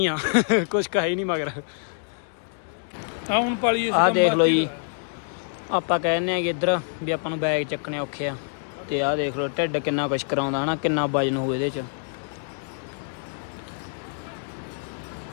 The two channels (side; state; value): right; silent; digital silence